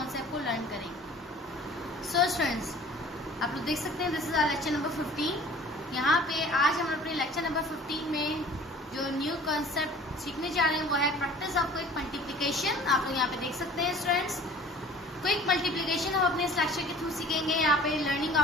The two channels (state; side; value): normal; both; correlation 0.47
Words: को लर्न करेंगे। सो स्टूडेंट्स, आप लोग देख सकते हैं this is our lecture number 15। यहाँ पे आज हम अपने लेक्चर नंबर 15 में जो न्यू कॉन्सेप्ट सीखने जा रहे हैं वो है प्रैक्टिस ऑफ क्विक मल्टीप्लिकेशन। आप लोग यहाँ पे देख सकते हैं स्टूडेंट्स, क्विक मल्टीप्लिकेशन हम अपने इस लेक्चर के थ्रू सीखेंगे। यहाँ पे लर्निंग